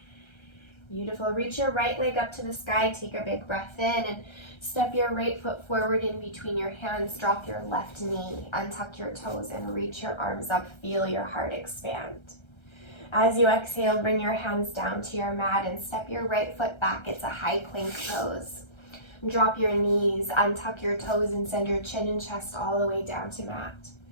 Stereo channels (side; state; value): right; late; 1.3 ms